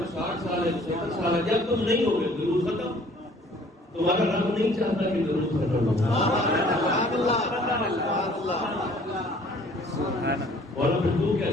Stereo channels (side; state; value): both; normal; correlation 0.55